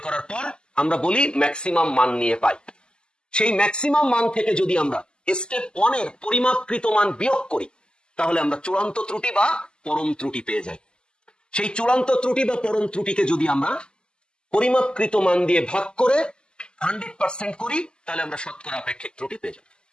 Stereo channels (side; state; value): right; late; 0.048 ms